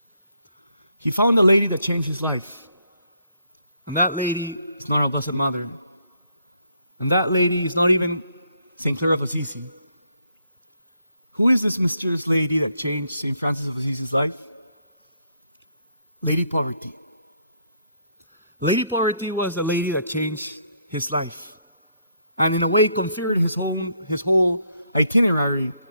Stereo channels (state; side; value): inverted; both; correlation -0.72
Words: He found a lady that changed his life. And that lady is not our Blessed Mother. And that lady is not even St. Clare of Assisi. Who is this mysterious lady that changed St. Francis of Assisi's life? Lady Poverty. Lady Poverty was the lady that changed his life, and in a way configured his whole itinerary